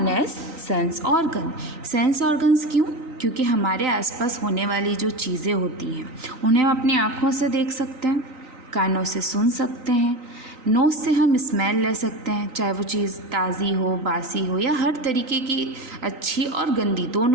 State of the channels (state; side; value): late; left; 3.9 ms